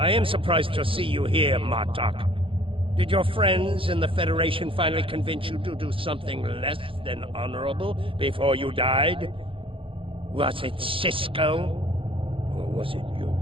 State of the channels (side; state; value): left; late; 0.25 ms